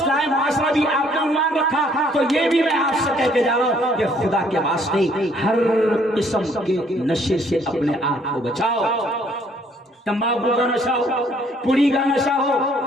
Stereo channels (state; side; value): normal; both; correlation 0.63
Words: معاشرہ بھی آپ نے عنوان رکھا, تو یہ بھی میں آپ سے کہہ کے جا رہا ہوں کہ خدا کے واسطے ہر قسم کے نشے سے اپنے آپ کو بچاؤ. تمباکو کا نشہ ہو, پوڑی کا نشہ ہو,